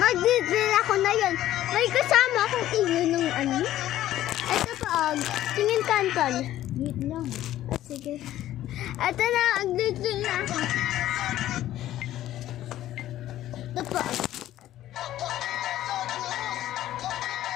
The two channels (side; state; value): right; quieter; 13.5 dB